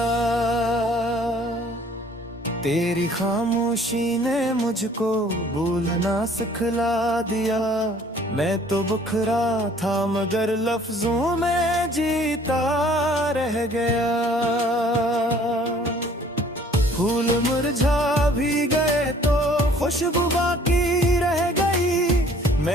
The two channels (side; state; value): both; normal; correlation 0.55